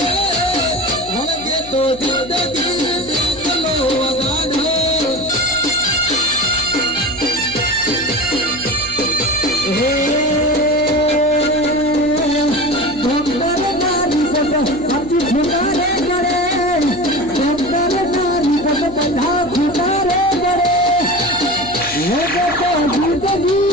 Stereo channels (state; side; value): noise; left; hum, 17 dB below the sound